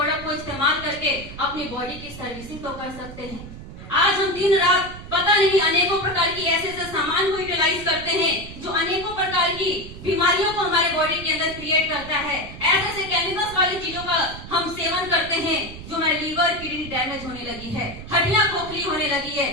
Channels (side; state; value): right; noise; rumble, 13 dB below the sound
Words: को इस्तेमाल करके अपनी बॉडी की सर्विसिंग तो कर सकते हैं। आज हम दिन रात पता नहीं अनेकों प्रकार की ऐसे सामान को यूटिलाइज करते हैं जो अनेकों प्रकार की बीमारियों को हमारे बॉडी के अंदर क्रिएट करता है। ऐसे केमिकल्स वाली चीजों का हम सेवन करते हैं जो हमारे लीवर किडनी डैमेज होने लगी है, हड्डियां खोखली होने लगी है,